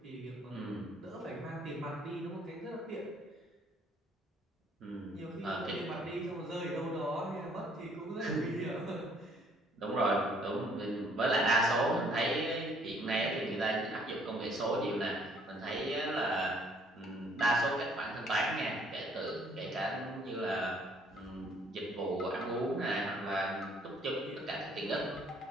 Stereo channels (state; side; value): normal; both; correlation 0.62